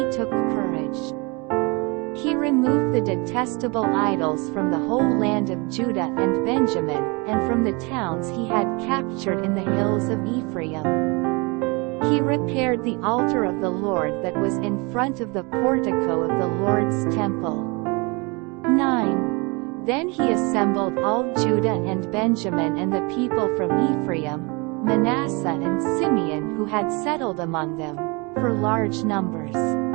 took courage. He removed the detestable idols from the whole land of Judah and Benjamin, and from the towns he had captured in the hills of Ephraim. He repaired the altar of the Lord that was in front of the portico of the Lord's temple. 9. Then he assembled all Judah and Benjamin and the people from Ephraim, Manasseh and Simeon who had settled among them, for large numbers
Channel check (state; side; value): quieter; left; 28.6 dB